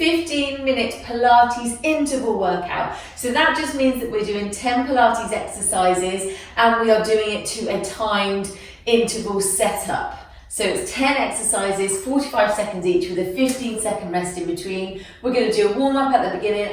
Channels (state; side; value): identical; both; correlation 1.00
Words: 15-minute Pilates interval workout. So that just means that we're doing 10 Pilates exercises and we are doing it to a timed interval setup. So it's 10 exercises, 45 seconds each with a 15-second rest in between. We're going to do a warm-up at the beginning